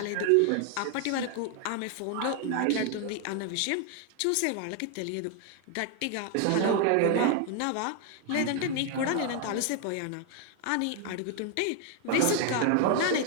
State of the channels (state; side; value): different; both; correlation 0.00